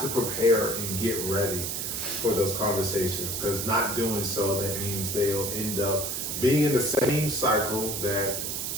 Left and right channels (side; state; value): right; noise; hiss, 3 dB below the sound